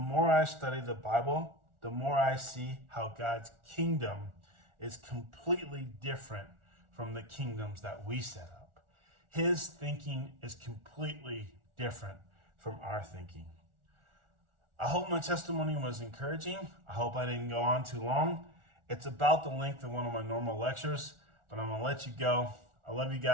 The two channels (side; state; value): left; late; 1.4 ms